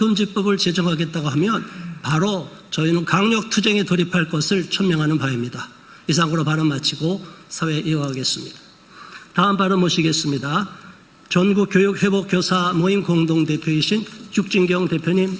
제정하겠다고 하면 바로 저희는 강력투쟁에 돌입할 것을 천명하는 바입니다. 이상으로 발언 마치고 사회 이어가겠습니다. 다음 발언 모시겠습니다. 전국교육회복교사 모임 공동대표이신 육진경 대표님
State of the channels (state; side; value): identical; both; correlation 1.00